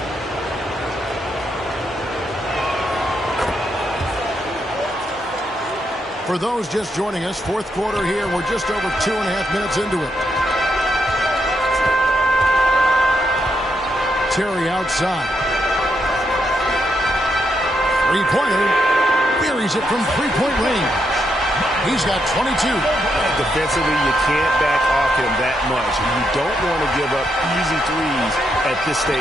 For those just joining us, fourth quarter here. We're just over 2.5 minutes into it. Terry outside. Three-pointer. Buries it from three-point range. He's got 22. Defensively, you can't back off him that much. You don't want to give up easy threes at this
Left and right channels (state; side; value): normal; both; correlation 0.80